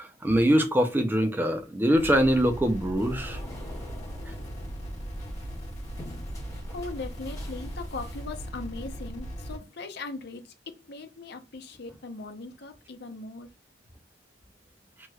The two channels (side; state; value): both; normal; correlation 0.83